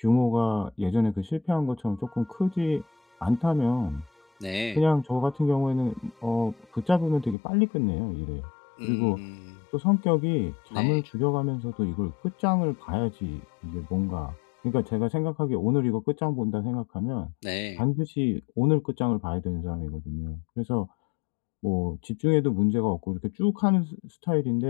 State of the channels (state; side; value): drops out; right; at 7.4 s